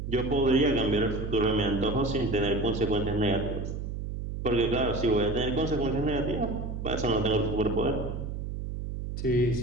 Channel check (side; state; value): right; noise; hum, 5 dB below the sound